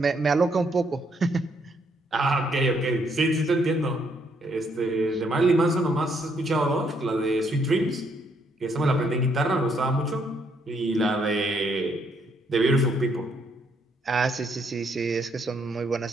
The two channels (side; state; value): both; normal; correlation 0.72